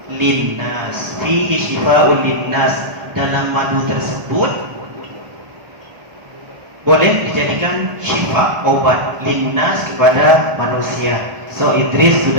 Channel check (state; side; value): late; left; 1.4 ms